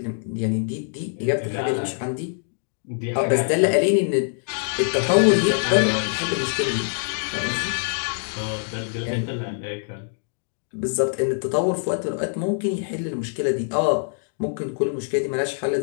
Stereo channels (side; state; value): right; silent; digital silence